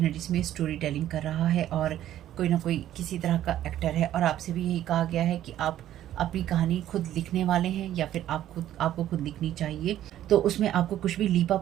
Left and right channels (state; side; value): quieter; left; 12.3 dB